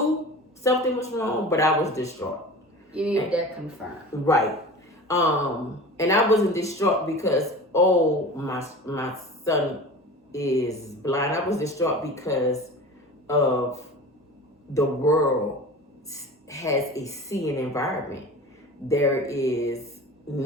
something was wrong, but I was distraught. You needed that confirmed. Right. And I wasn't distraught because my son is blind. I was distraught because of the world has a seeing environment. There is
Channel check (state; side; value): normal; both; correlation 0.36